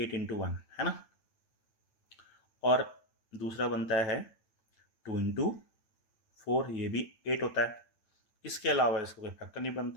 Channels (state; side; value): late; right; 9.0 ms